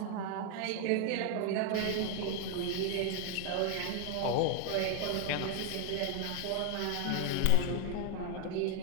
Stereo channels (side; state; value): both; different; correlation 0.01